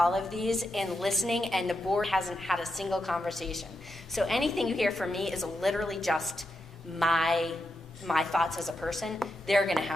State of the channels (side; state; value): both; normal; correlation 0.85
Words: of these and listening, and the board hasn't had a single conversation. So anything you hear from me is literally just my thoughts as a person. They're gonna